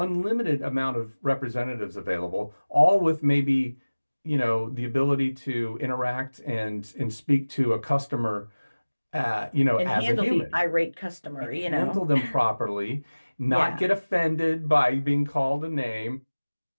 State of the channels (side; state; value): both; inverted; correlation -1.00